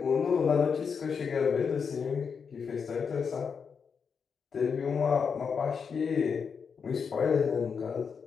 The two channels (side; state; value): right; quieter; 6.1 dB